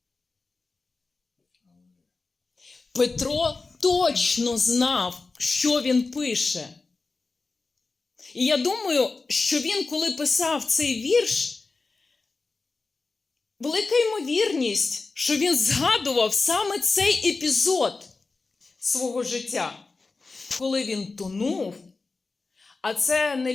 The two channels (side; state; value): right; quieter; 3.9 dB